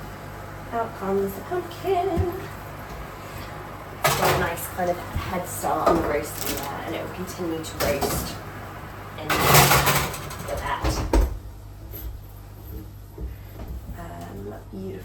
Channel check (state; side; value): identical; both; correlation 1.00